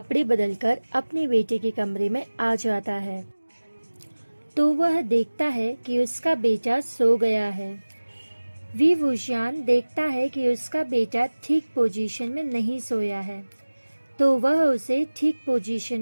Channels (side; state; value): both; inverted; correlation -1.00